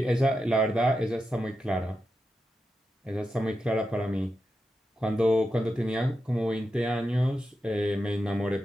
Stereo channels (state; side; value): normal; both; correlation 0.88